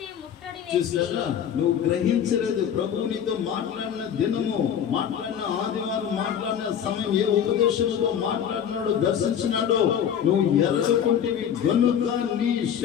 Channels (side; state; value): right; quieter; 8.8 dB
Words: చూసారా? నువ్వు గ్రహించలేదు. ప్రభువు నీతో మాట్లాడిన దినము, మాట్లాడిన ఆదివారం, మాట్లాడిన సమయం, ఏ ఉపదేశంతో మాట్లాడినాడో, దర్శించినాడో నువ్వు ఎరగకుంటివి గనుక నీ